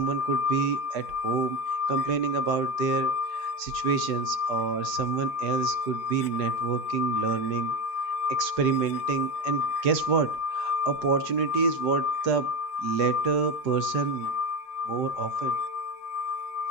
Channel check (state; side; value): late; right; 4.9 ms